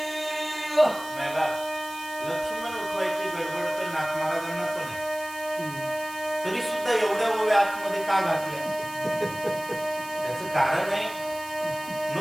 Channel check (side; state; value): right; noise; hiss, 15 dB below the sound